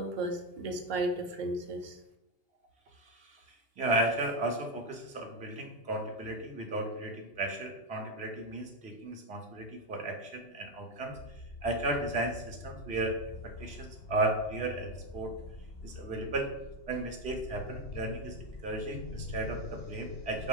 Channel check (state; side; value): late; right; 2.8 ms